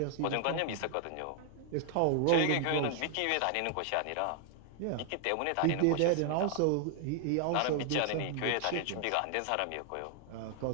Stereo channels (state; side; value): different; both; correlation 0.00